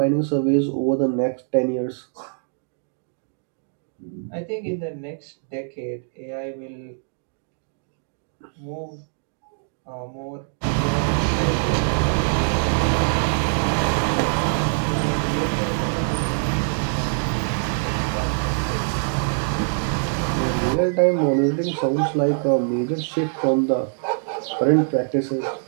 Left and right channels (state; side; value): silent; left; digital silence